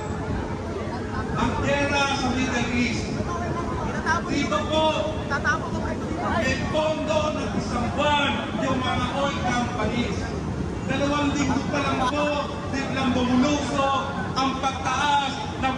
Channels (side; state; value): both; identical; correlation 1.00